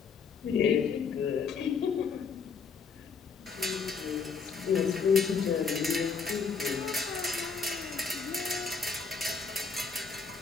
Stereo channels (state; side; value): quieter; right; 5.4 dB